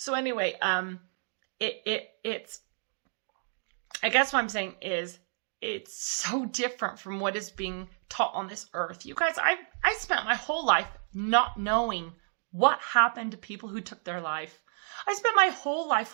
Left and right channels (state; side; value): silent; left; digital silence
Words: anyway, it's, I guess what I'm saying is it's so different from what is being taught on this earth. You guys, I spent my whole life not knowing what happened to people who took their life. I spent my whole